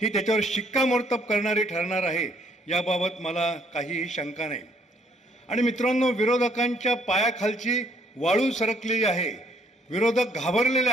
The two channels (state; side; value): normal; both; correlation 0.66